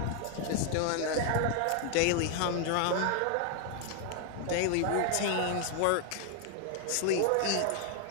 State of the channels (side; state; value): both; different; correlation 0.00